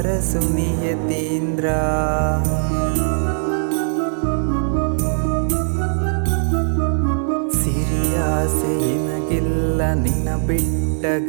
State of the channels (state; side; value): silent; left; digital silence